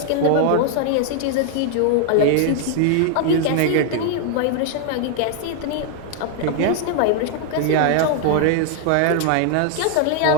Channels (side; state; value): both; different; correlation 0.00